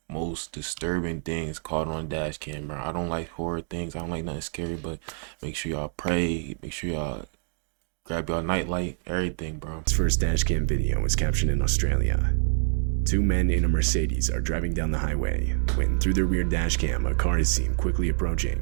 most disturbing things caught on dash camera. I don't like horror things. I don't like nothing scary, but make sure y'all pray. Make sure y'all grab y'all nightlight, everything, bro. His first dash cam video was captured in Australia. 2 men in a Mercedes are driving down the highway when, through their rear dash cam, a car is seen quickly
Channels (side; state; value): left; silent; digital silence